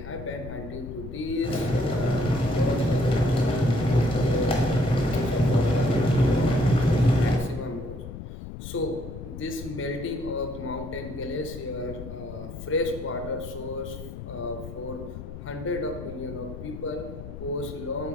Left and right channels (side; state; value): left; noise; rumble, 10 dB below the sound